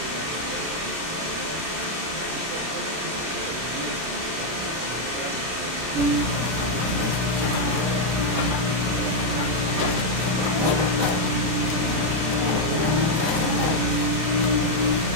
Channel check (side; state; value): left; late; 32 ms